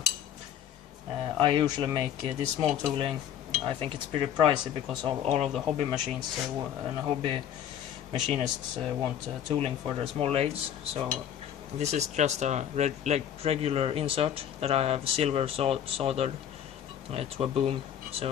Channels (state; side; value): quieter; right; 9.8 dB